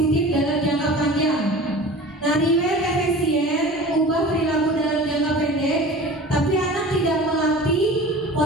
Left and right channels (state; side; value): normal; both; correlation 0.38